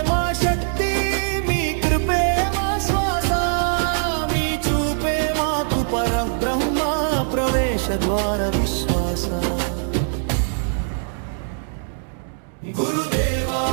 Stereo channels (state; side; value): silent; left; 64 dB below the other